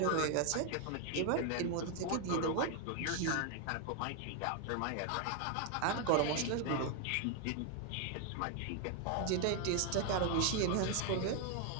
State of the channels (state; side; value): different; both; correlation 0.01